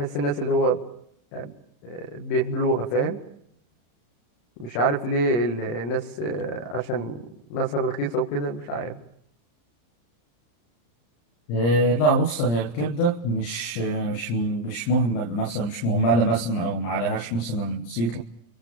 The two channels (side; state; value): right; late; 34 ms